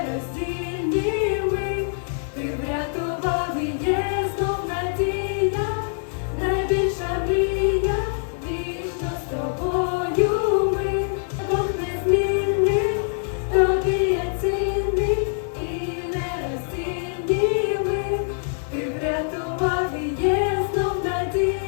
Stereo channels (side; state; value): right; silent; digital silence